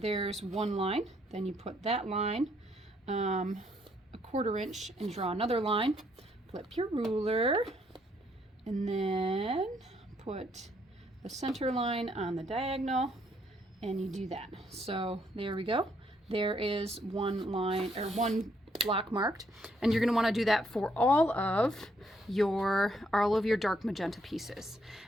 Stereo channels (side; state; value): both; normal; correlation 0.71